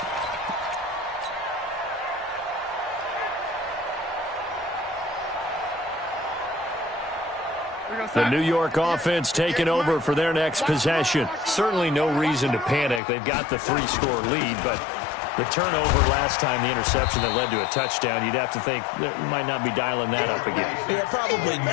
The New York offense taking over for their next possession. Certainly no reason to panic. They've got the 3-score lead, but the turnover last time, the interception that led to a touchdown, you'd have to think they might not be dialing that up again. Yeah, probably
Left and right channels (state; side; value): drops out; right; at 13.0 s